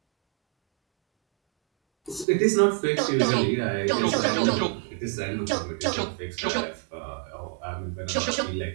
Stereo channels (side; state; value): left; drops out; at 2.2 s